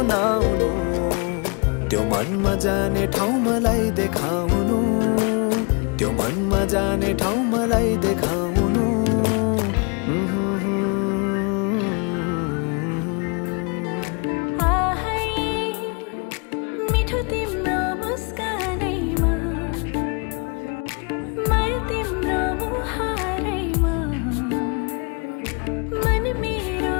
त्यो मनमा जाने ठाउँ मलाई देखाउनु त्यो मनमा जाने ठाउँ मलाई देखाउनु मिठो तिम्रो मुस्कानैमा माया तिम्रो मुहारैमा मन मेरो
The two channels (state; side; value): quieter; right; 33.8 dB